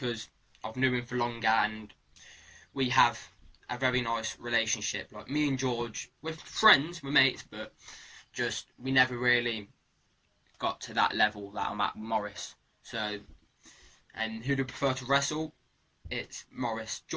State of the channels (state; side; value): identical; both; correlation 1.00